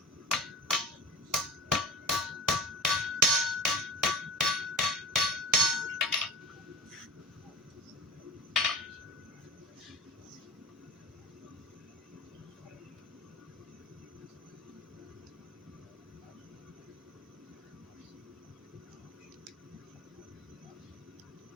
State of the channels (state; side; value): normal; both; correlation 0.30